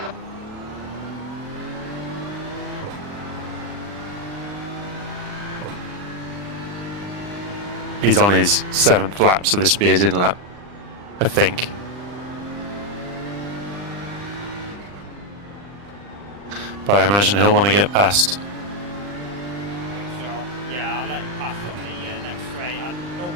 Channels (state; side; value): late; left; 40 ms